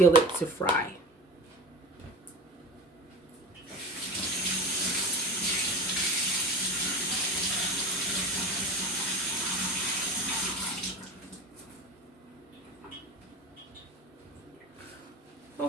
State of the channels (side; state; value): both; normal; correlation 0.32